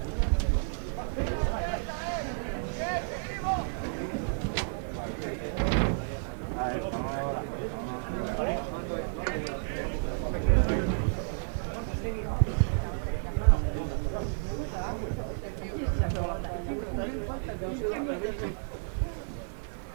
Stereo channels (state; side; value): silent; left; digital silence